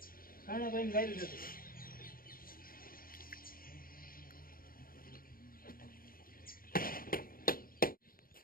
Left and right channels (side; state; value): right; late; 0.42 ms